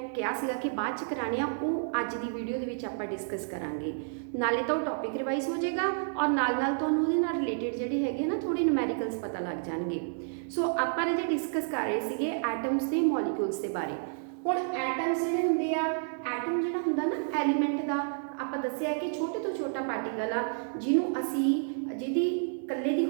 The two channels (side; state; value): left; silent; 56 dB below the other